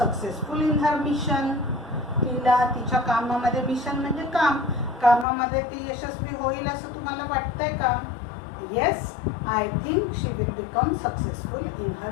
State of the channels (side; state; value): right; drops out; at 5.2 s